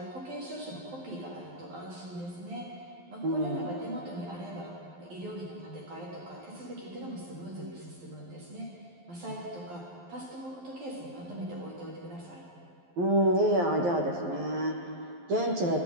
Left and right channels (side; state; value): left; late; 12 ms